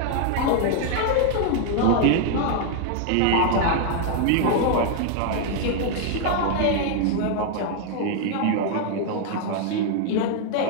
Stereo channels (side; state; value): both; different; correlation 0.00